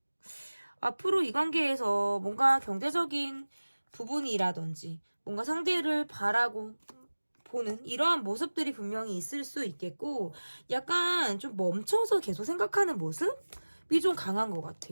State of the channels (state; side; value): inverted; both; correlation -1.00